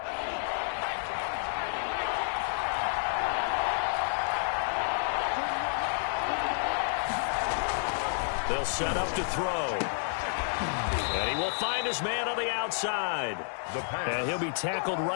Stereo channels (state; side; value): silent; right; digital silence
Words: They'll set up to throw. And he will find his man on the outside. And he'll be tackled